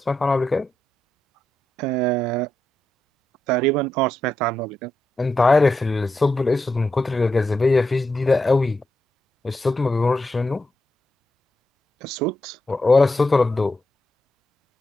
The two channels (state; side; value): normal; both; correlation 0.85